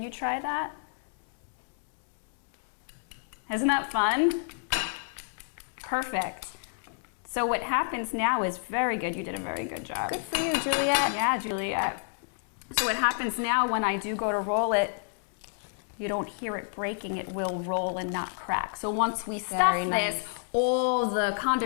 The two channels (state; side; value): silent; right; 59 dB below the other